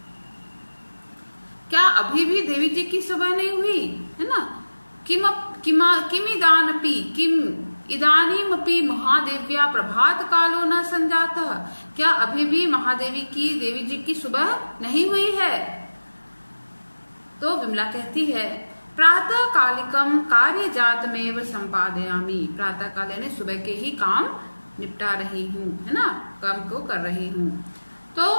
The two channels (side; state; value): both; inverted; correlation -1.00